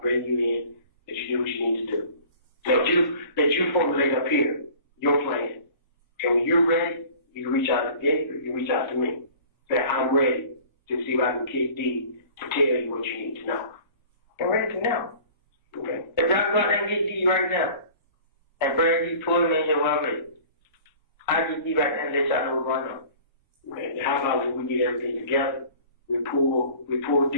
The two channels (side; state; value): both; inverted; correlation -0.46